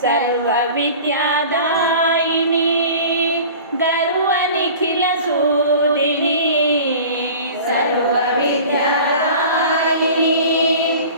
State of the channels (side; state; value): both; inverted; correlation -0.40